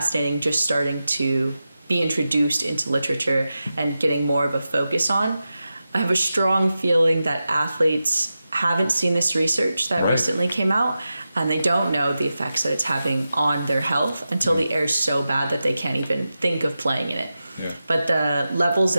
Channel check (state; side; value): inverted; both; correlation -0.92